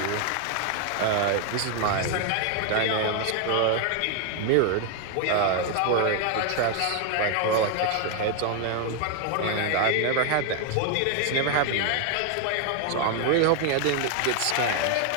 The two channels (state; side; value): different; both; correlation 0.00